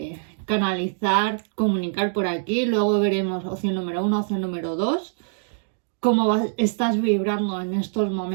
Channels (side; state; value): left; silent; digital silence